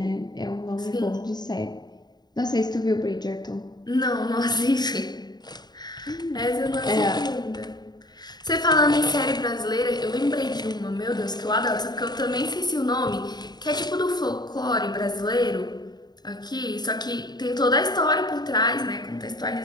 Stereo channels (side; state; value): right; late; 0.20 ms